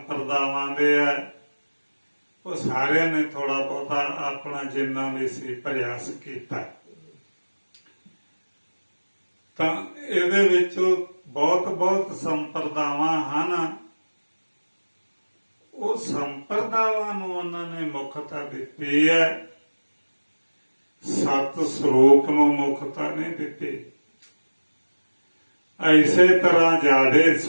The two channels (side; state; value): both; inverted; correlation -1.00